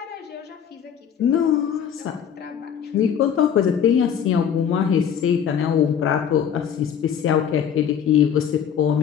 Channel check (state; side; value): quieter; right; 8.3 dB